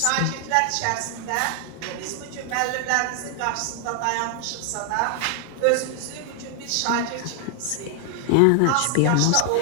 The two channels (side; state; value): both; different; correlation 0.00